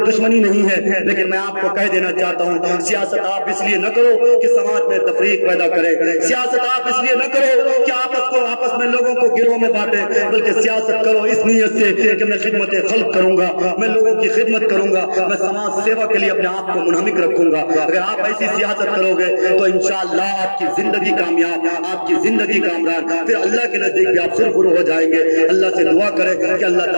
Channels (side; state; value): both; inverted; correlation -1.00